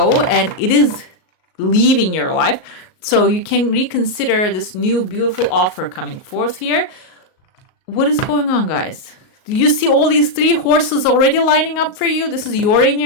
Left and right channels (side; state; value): right; late; 38 ms